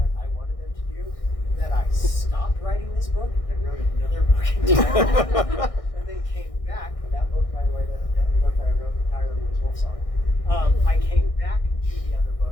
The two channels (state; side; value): late; right; 1.6 ms